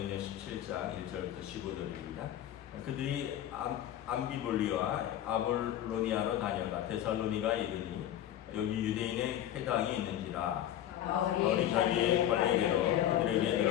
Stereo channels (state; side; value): quieter; right; 11.6 dB